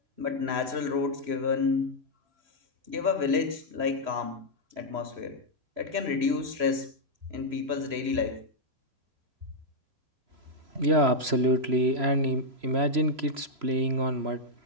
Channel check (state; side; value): late; left; 3.0 ms